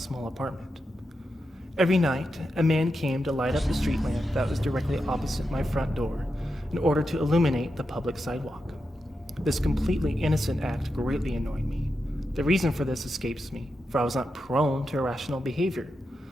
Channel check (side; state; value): both; normal; correlation 0.88